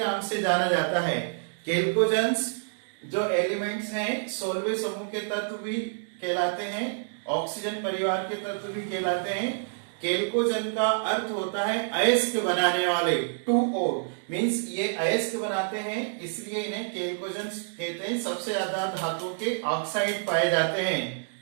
से जाना जाता है। केल्कोजन्स जो एलिमेंट्स हैं 16वें समूह के तत्व भी कहलाते हैं, ऑक्सीजन परिवार के तत्व भी कहलाते हैं। केल्कोजन का अर्थ होता है अयस्क बनाने वाले, 2O मीन्स ये अयस्क बनाते हैं, इसलिए इन्हें केल्कोजन्स कहते हैं। सबसे ज्यादा धातुओं के ऑक्साइड पाए जाते हैं।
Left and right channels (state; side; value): silent; left; digital silence